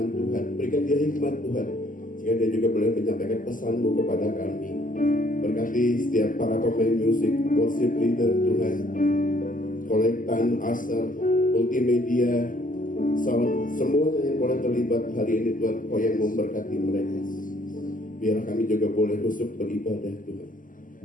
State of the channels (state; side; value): late; right; 0.39 ms